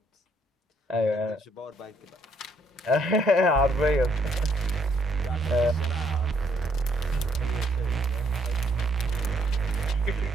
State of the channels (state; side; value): normal; both; correlation 0.69